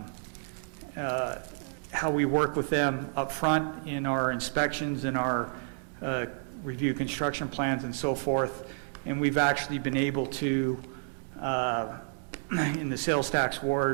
how we work with them up front in our inspections and our review construction plans and so forth. And we've actually been able to, in the sales tax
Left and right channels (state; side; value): silent; left; digital silence